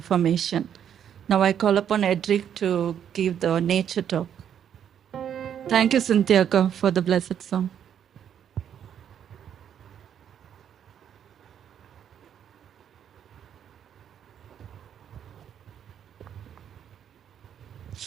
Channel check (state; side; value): quieter; left; 9.1 dB